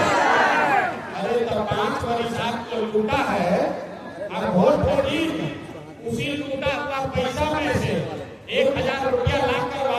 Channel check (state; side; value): identical; both; correlation 1.00